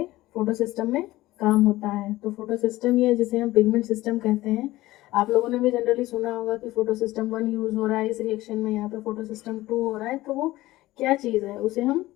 फोटो सिस्टम में काम होता है। तो फोटो सिस्टम ये जिसे हम पिगमेंट सिस्टम कहते हैं, आप लोगों ने भी जनरली सुना होगा कि फोटो सिस्टम 1 यूज हो रहा है इस रिएक्शन में, यहाँ पे फोटो सिस्टम 2 हो रहा है, तो वो क्या चीज़ है उसे हम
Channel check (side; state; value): right; quieter; 17.4 dB